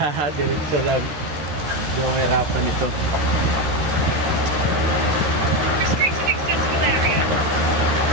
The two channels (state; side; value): late; left; 13 ms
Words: Diretso lang. Hindi ako mahirapan ito. Restricted accessible area.